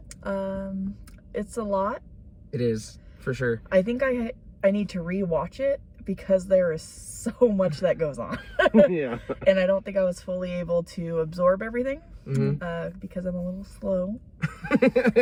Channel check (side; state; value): both; identical; correlation 1.00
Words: It's a lot. It is, for sure. I think I need to rewatch it because there is so much that goes on. Yeah. And I don't think I was fully able to absorb everything because I'm a little slow.